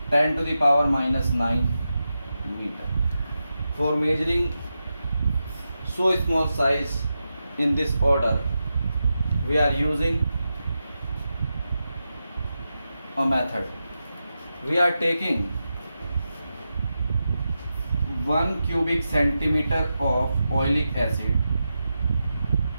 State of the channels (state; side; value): inverted; both; correlation -0.89